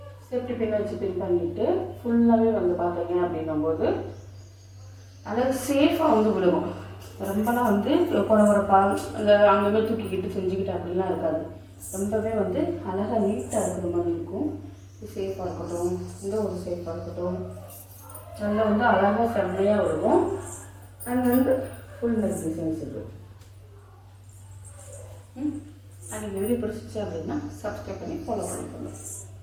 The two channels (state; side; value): identical; both; correlation 1.00